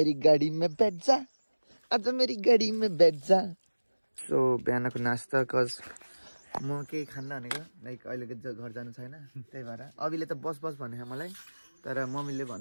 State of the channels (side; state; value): both; inverted; correlation -1.00